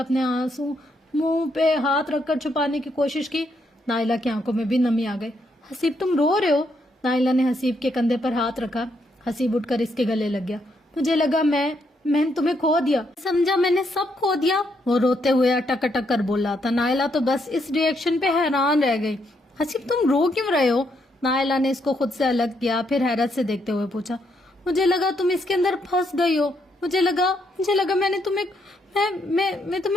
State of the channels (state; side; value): normal; both; correlation 0.76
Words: آنسو منہ پہ ہاتھ رکھ کر چھپانے کی کوشش کی۔ نائلہ کی آنکھوں میں بھی نمی آ گئی۔ حسیب تم رو رہے ہو؟ نائلہ نے حسیب کے کندھے پر ہاتھ رکھا۔ حسیب اٹھ کر اس کے گلے لگ گیا۔ مجھے لگا میں نے تمہیں کھو دیا، سمجھا میں نے سب کھو دیا، وہ روتے ہوئے اٹک اٹک کر بولا تھا۔ نائلہ تو بس اس ری ایکشن پہ حیران رہ گئی۔ حسیب تم رو کیوں رہے ہو؟ نائلہ نے اس کو خود سے الگ کیا، پھر حیرت سے دیکھتے ہوئے پوچھا۔ مجھے لگا تم اس کے اندر پھنس گئی ہو، مجھے لگا میں نے تمہیں میں